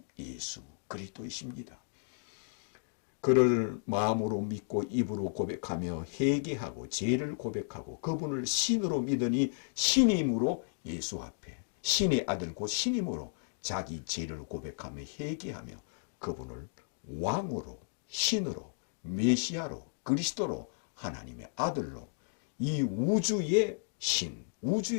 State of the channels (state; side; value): silent; right; digital silence